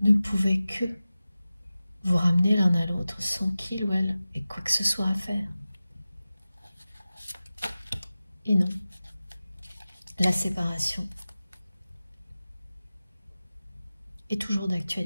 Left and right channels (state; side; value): inverted; both; correlation -0.96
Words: ne pouvait que vous ramener l'un à l'autre sans qu'il ou elle ait quoi que ce soit à faire. Et non, la séparation est toujours